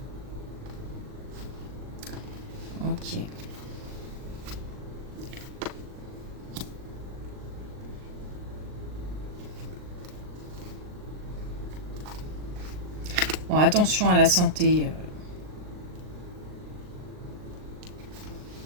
Ok. Bon, attention à la santé.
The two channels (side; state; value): left; late; 39 ms